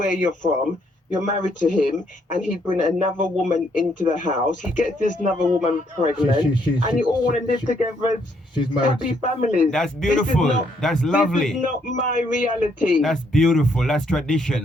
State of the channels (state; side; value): normal; both; correlation 0.71